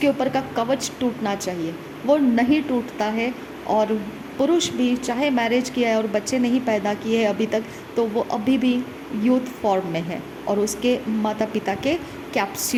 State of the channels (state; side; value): identical; both; correlation 1.00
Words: ऊपर का कवच टूटना चाहिए, वो नहीं टूटता है। और पुरुष भी चाहे मैरिज किया है और बच्चे नहीं पैदा किए हैं अभी तक, तो वो अभी भी यूथ फॉर्म में है और उसके माता पिता के